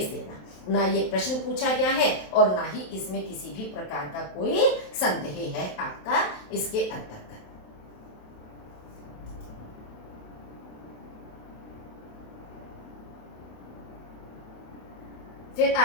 देना। ना ये प्रश्न पूछा गया है और ना ही इसमें किसी भी प्रकार का कोई संदेह है आपका इसके अंतर्गत। फिर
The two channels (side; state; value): right; late; 27 ms